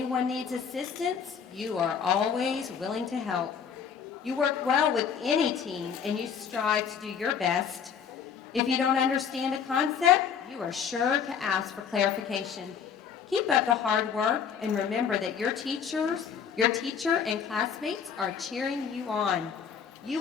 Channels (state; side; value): quieter; right; 7.2 dB